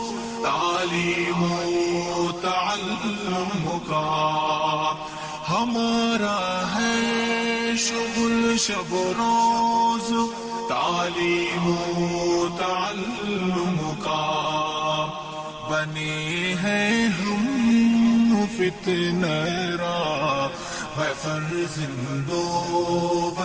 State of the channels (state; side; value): identical; both; correlation 1.00